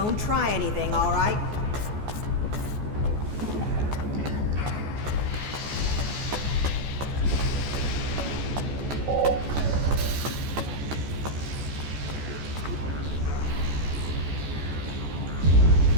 try anything, all right?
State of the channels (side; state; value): left; late; 14 ms